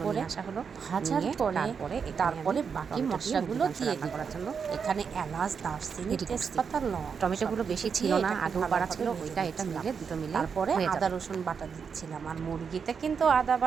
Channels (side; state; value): left; quieter; 6.2 dB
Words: উপরে। নিয়ে আসা হলো। ভাজার নিয়ে পরে এখানে আমি বাকি টমেটো দিয়ে মুরগির মশলাগুলো মাংস দিয়ে রান্না দিব। করার জন্য এখানে এলাচ, দারচিনি, রেডি করছি। তেজপাতা, লং টমেটোগুলো সবকিছু বেশি ছিল দিয়ে না, এটাকে আগেও পাড়া ভালোভাবে ছিল, ভেজে ওইটা এটা নিচ্ছিলাম। মিলে দুটো মিলে তারপরে হয়ে আদা যাবে। রসুন বাটা দিচ্ছিলাম, আর মুরগিতে কিন্তু আদা